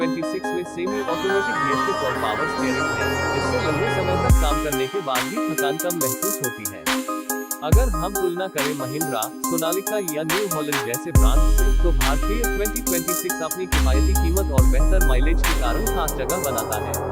में सेमी ऑटोमेटिक गियर शिफ्ट और पावर स्टीयरिंग है, जिससे लंबे समय तक काम करने के बाद भी थकान कम महसूस होती है। अगर हम तुलना करें महिंद्रा, सोनालिका या न्यू हॉलैंड जैसे ब्रांड से, तो भारतीय 2026 अपनी किफायती कीमत और बेहतर माइलेज के कारण खास जगह बनाता है।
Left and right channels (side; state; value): both; identical; correlation 1.00